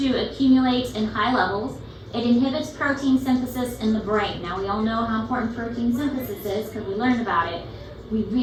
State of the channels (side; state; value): both; identical; correlation 1.00